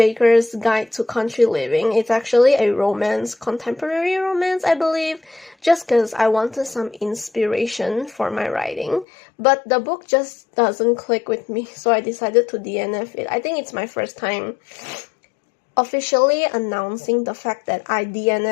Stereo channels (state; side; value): drops out; right; at 9.1 s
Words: Guide to Country Living. It's actually a romance, contemporary romance, I believe, just because I wanted some inspiration for my writing. But the book just doesn't click with me, so I decided to DNF it. I think it's my first time officially announcing the fact that I